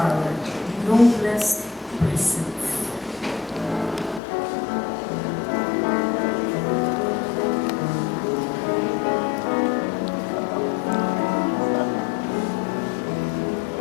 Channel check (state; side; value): drops out; right; at 4.2 s